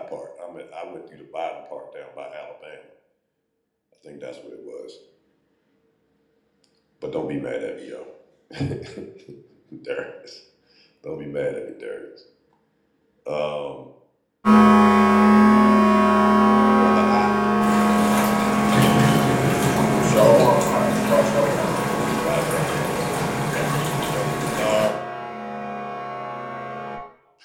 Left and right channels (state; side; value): identical; both; correlation 1.00